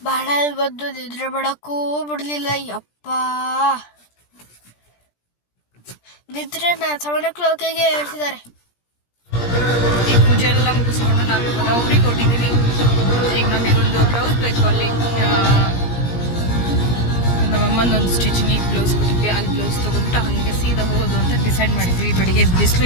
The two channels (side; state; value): right; late; 17 ms